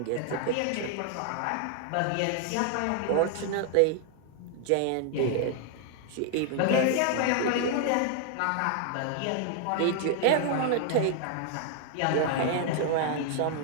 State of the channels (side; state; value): both; different; correlation 0.00